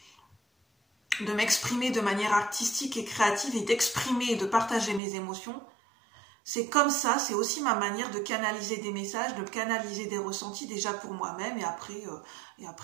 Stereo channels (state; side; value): drops out; left; at 5.0 s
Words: de m'exprimer de manière artistique et créative et d'exprimer et de partager mes émotions. C'est comme ça, c'est aussi ma manière de canaliser des messages, de canaliser des ressentis déjà pour moi-même et